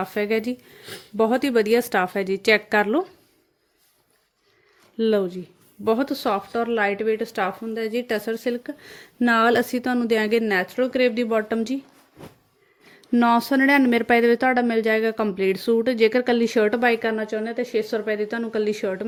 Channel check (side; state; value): both; identical; correlation 1.00